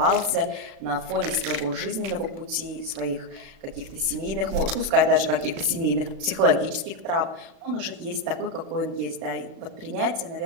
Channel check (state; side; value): late; left; 36 ms